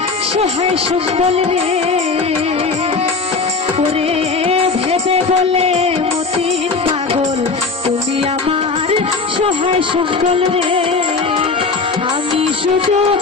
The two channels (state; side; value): quieter; right; 4.3 dB